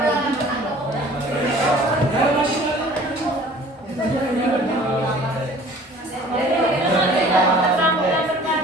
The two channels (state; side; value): normal; both; correlation 0.49